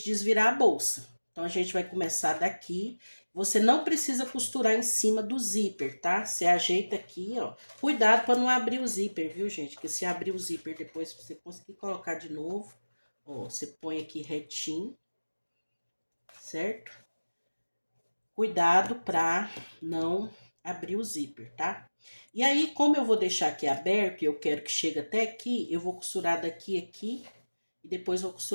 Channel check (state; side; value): inverted; both; correlation -1.00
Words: desvirar a bolsa. Então, a gente vai começar daqui. Você não precisa costurar em cima do zíper, tá? Você ajeita aqui, ó. Cuidado para não abrir o zíper, viu, gente? Porque se abrir o zíper depois, você conseguir colocar de novo, ó, você põe aqui retinho, certo? Cuidado para não abrir o zíper, tá? E aí, como eu vou deixar aqui aberto e eu quero que chegue até aqui, eu vou costurar daqui aqui e depois vou